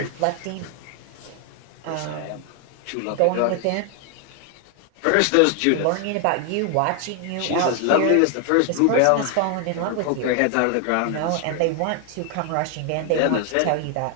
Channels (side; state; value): both; different; correlation 0.00